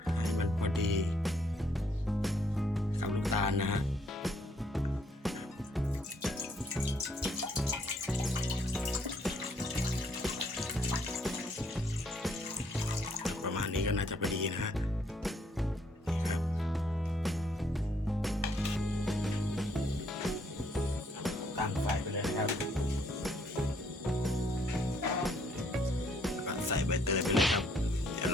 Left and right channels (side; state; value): both; normal; correlation 0.68